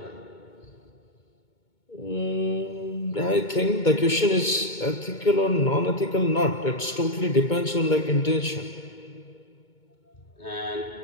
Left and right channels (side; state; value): right; late; 2.2 ms